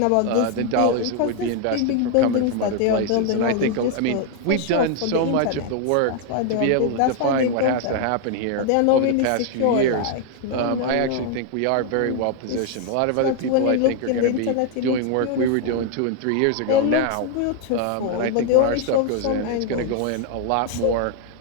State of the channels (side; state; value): both; different; correlation 0.00